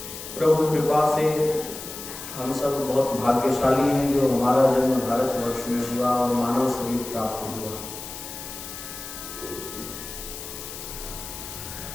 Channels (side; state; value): left; noise; hiss, 10 dB below the sound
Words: प्रभु कृपा से हम सब बहुत भाग्यशाली हैं जो हमारा जन्म भारतवर्ष में हुआ और मानव शरीर प्राप्त हुआ।